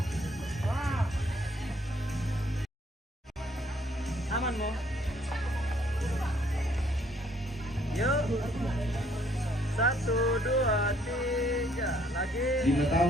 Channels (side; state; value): both; normal; correlation 0.65